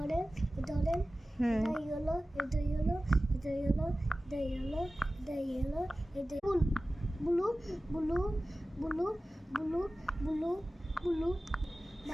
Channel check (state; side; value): normal; both; correlation 0.96